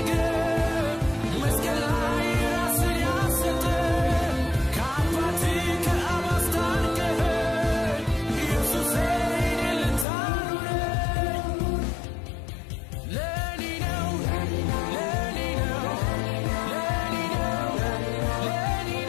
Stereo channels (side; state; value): right; drops out; at 10.1 s